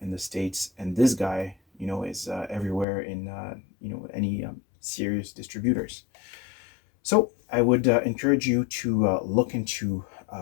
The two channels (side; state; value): right; drops out; at 2.9 s